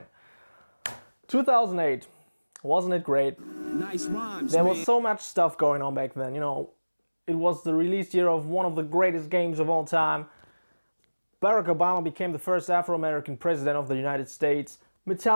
2008, wasn't it great? Nice rhymes, There man. was so much stuff going on back then, It was the release year of one of the greatest games of all time. Barack Obama became the first Afro-American president of the United States.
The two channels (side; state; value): both; inverted; correlation -1.00